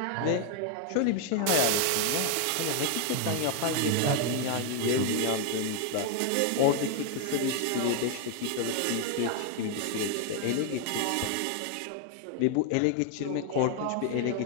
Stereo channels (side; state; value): both; different; correlation 0.01